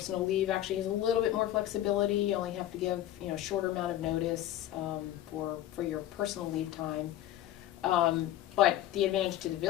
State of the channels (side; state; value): right; quieter; 13.1 dB